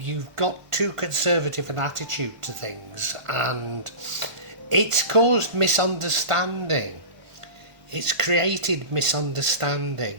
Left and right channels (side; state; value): left; late; 1.5 ms